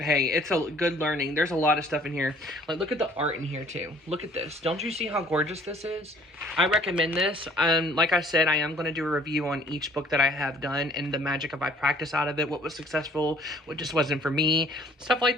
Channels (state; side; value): normal; both; correlation 0.57